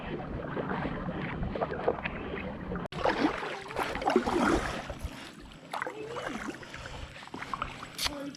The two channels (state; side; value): identical; both; correlation 1.00